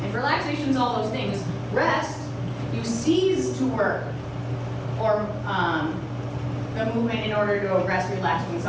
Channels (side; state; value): both; identical; correlation 1.00